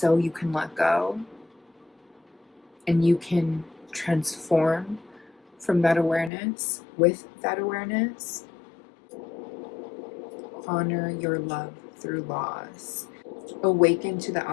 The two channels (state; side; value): drops out; right; at 6.3 s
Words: you can let go and you can transform from that awareness? With that awareness, honor your love through loss. Awaken to the